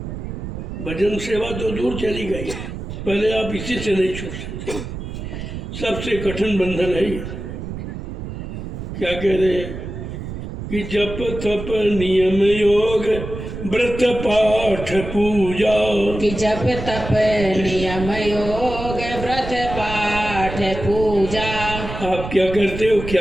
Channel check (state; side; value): noise; right; rumble, 8 dB below the sound